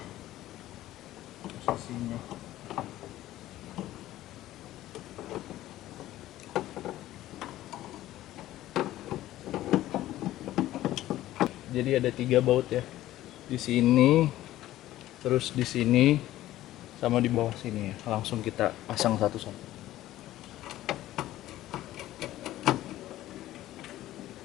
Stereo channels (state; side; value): quieter; right; 14.7 dB